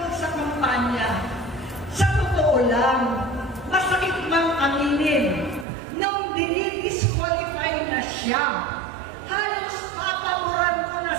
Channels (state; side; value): drops out; left; at 5.7 s